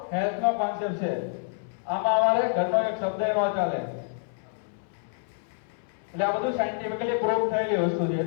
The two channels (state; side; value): silent; right; 59 dB below the other